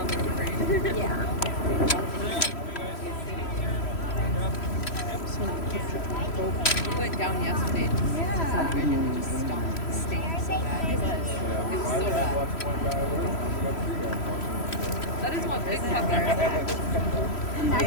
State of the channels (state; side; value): late; right; 3.0 ms